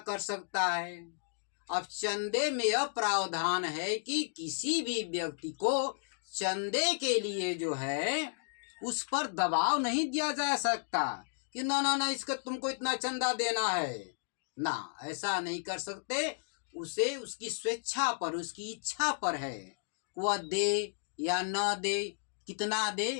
कर सकता है। अब चंदे में यह प्रावधान है कि किसी भी व्यक्ति को चंदे के लिए जो है उस पर दबाव नहीं दिया जा सकता कि ना इसका तुमको इतना चंदा देना है ना, ऐसा नहीं कर सकते। उसे उसकी स्वेच्छा पर, उसकी इच्छा पर है, वह दे या न दे, कितना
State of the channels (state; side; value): silent; right; digital silence